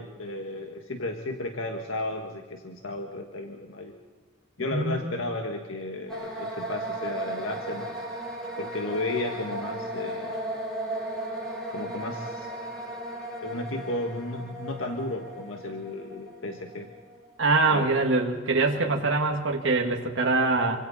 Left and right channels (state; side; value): normal; both; correlation 0.04